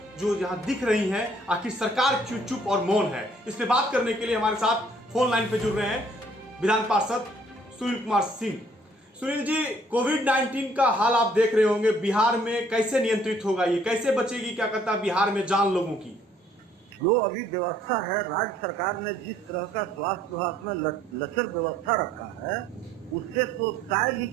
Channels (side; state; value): both; normal; correlation 0.61